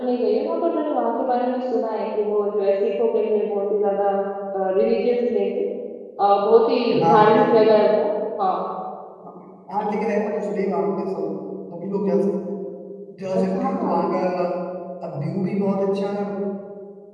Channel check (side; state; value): both; identical; correlation 1.00